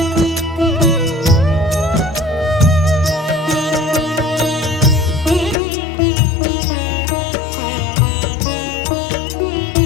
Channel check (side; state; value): right; drops out; at 5.6 s